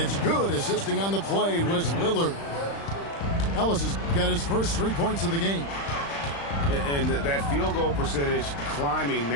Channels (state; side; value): late; right; 35 ms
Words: good. Assisting on the play was Lillard. Ellis has got his first 3 points of the game. And that field goal percentage climbing